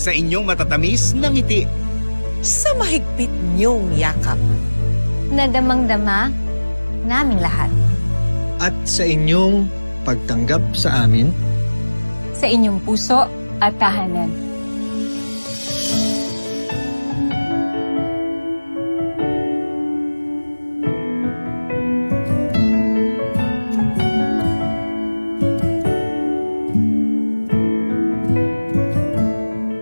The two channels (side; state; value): both; inverted; correlation -1.00